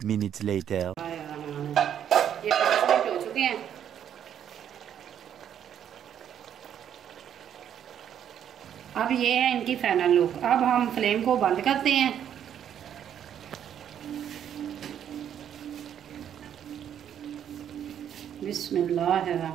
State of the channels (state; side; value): quieter; left; 9.5 dB